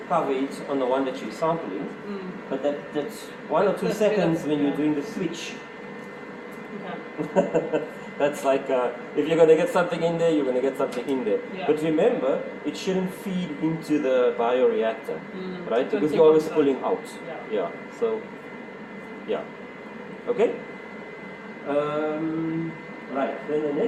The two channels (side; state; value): both; identical; correlation 1.00